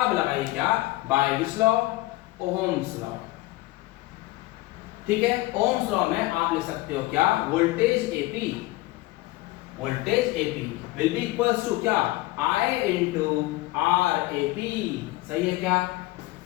लगाइए क्या? By which law? Ohm's law. ठीक है, ओहम्स लॉ में आप लिख सकते हो क्या? Voltage AP, voltage AP will be equals to क्या? I into RAP। सही है क्या?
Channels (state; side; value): quieter; right; 19.6 dB